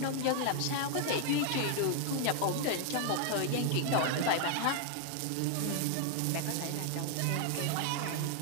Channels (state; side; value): different; both; correlation 0.00